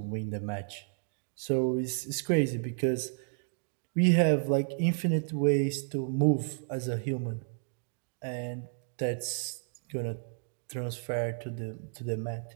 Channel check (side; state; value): left; silent; digital silence